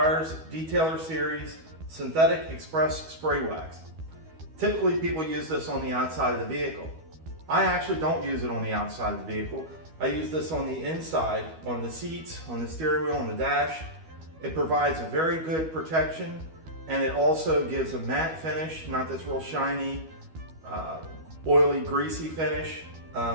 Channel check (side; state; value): left; late; 12 ms